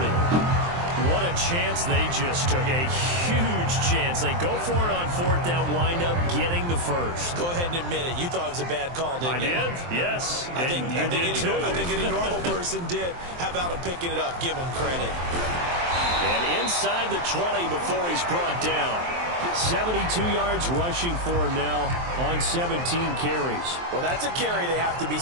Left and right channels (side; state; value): left; late; 23 ms